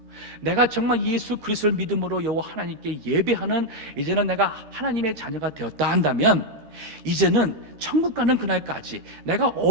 내가 정말 예수 그리스도를 믿음으로 여호와 하나님께 예배하는 이제는 내가 하나님의 자녀가 되었다 한다면 이제는 천국 가는 그날까지 내가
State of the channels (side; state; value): left; late; 13 ms